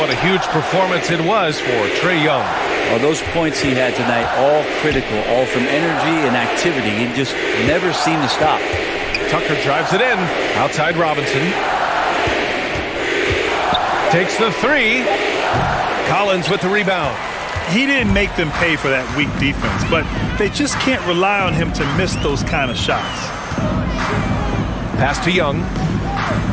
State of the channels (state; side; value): identical; both; correlation 1.00